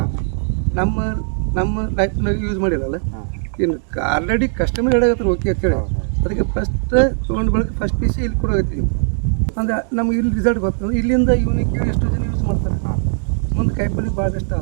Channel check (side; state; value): left; silent; digital silence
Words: ನಮ್ಮ ಲೈಫ್ನಾಗ ಯೂಸ್ ಮಾಡಿರಲ್ಲ. ಇನ್ನು ಆಲ್ರೆಡಿ ಕಸ್ಟಮರ್ ಹೇಳಾಗತ್ತಾರೆ ಓಕೆ ಅಂತೇಳಿ, ಅದಕ್ಕೆ ಫಸ್ಟ್ ತೊಗೊಂಡು ಬೆಳಗ್ಗೆ ಫಸ್ಟ್ ಪೀಸ್ ಇಲ್ಲಿ ಕೊಡೋಗತ್ತೀವಿ. ಅಂದರೆ ನಮ್ಗೆ ಇಲ್ಲಿ ರಿಸಲ್ಟ್ ಗೊತ್ತಂದ್ರೆ ಇಲ್ಲಿಂದ ಇವನಿಗೆ ಕೇಳಿ ಎಷ್ಟೋ ಜನ ಯೂಸ್ ಮಾಡ್ತಾರೆ. ಮುಂದೆ ಕಾಯಿಪಲ್ಲೆ ಭಾಳ ಇಷ್ಟ